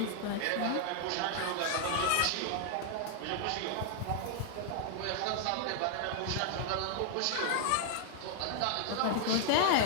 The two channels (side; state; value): both; different; correlation 0.00